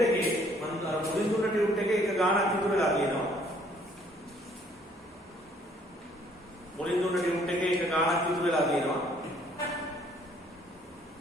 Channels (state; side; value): normal; both; correlation 0.62